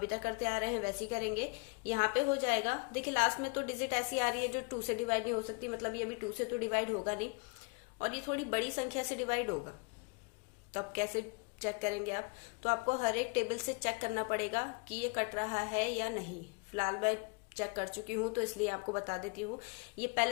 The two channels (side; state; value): right; quieter; 32.7 dB